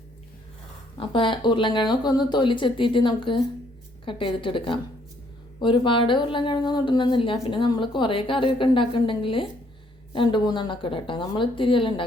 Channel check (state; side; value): normal; both; correlation 0.67